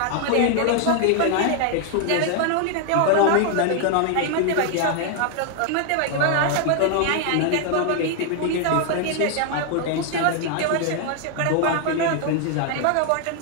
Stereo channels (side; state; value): both; different; correlation 0.00